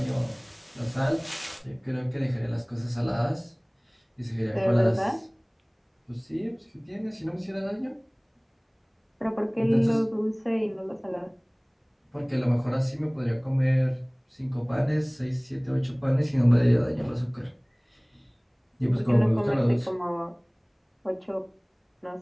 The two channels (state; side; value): identical; both; correlation 1.00